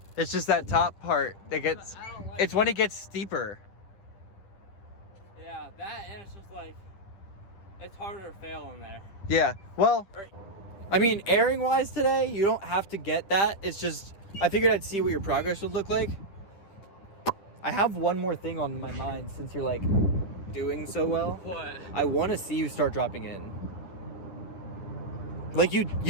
It's just that top part that gets, I don't like it's when it gets steeper. Yeah, that and it's just like, it's harder to fail in there. Yeah, well, Right. I mean, airing wise today, you don't have to get that. It's just, I figured I'd see what your progress would look like. I have one more thing on my mind since you're like doing so well. What? I want to see you start dropping in. Like you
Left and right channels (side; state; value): right; late; 10 ms